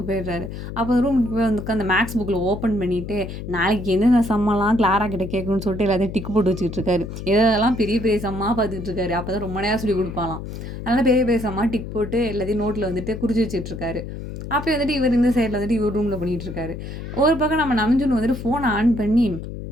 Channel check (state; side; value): noise; left; hum, 9 dB below the sound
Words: போயிடுறாரு. அப்போ ரூமுக்கு போய் வந்து உட்காந்து மேக்ஸ் புக்ல ஓப்பன் பண்ணிட்டு, நாளைக்கு எந்தெந்த சம்மெல்லாம் கிளாரா கிட்ட கேட்கணும்னு சொல்லிட்டு எல்லாத்தையும் டிக் போட்டு வச்சுக்கிட்டு இருக்காரு. எதெல்லாம் பெரிய பெரிய சம்மா பார்த்துக்கிட்டு இருக்காரு. அப்பதான் ரொம்ப நேரம் சொல்லிக் குடுப்பாளாம். அதனால பெரிய பெரிய சம்மா டிக் போட்டு எல்லாத்தையும் நோட்ல வந்துட்டு குறிச்சு வச்சுட்டு இருக்காரு. அப்பயும் வந்துட்டு இவர் இந்த சைடுல வந்துட்டு இவர் ரூம்ல பண்ணிட்டு இருக்காரு. ஒரு பக்கம் நம்ம நம்ஜுன் வந்துட்டு ஃபோன ஆன் பண்ணி